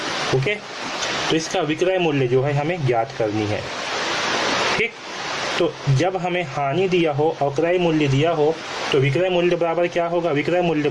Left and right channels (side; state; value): both; identical; correlation 1.00